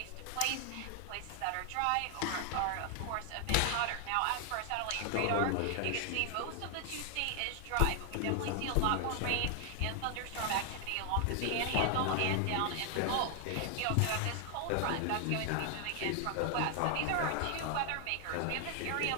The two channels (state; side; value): different; both; correlation 0.00